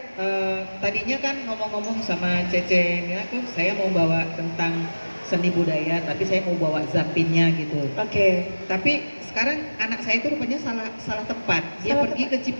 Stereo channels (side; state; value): both; inverted; correlation -1.00